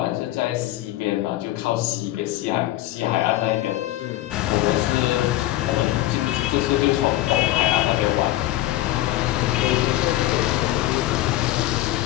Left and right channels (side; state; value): right; quieter; 15.6 dB